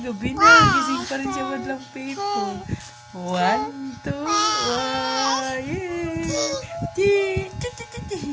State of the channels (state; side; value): identical; both; correlation 1.00